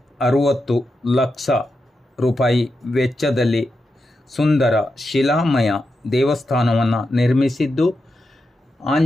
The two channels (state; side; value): normal; both; correlation 0.88